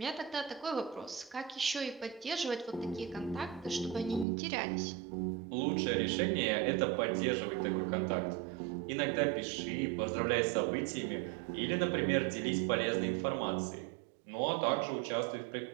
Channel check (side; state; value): left; drops out; at 4.2 s